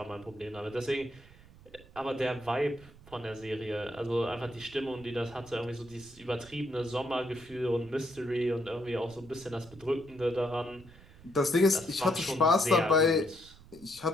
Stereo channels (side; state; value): right; noise; rumble, 22 dB below the sound